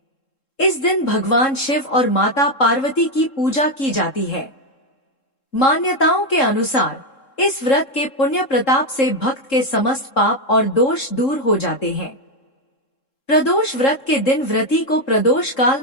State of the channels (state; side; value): late; right; 3.7 ms